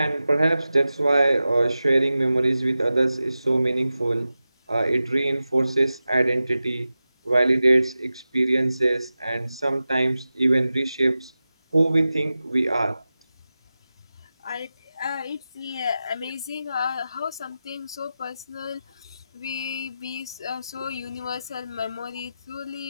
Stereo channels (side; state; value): both; inverted; correlation -0.94